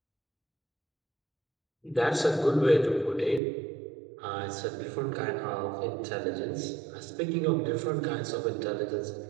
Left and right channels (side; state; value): left; drops out; at 3.4 s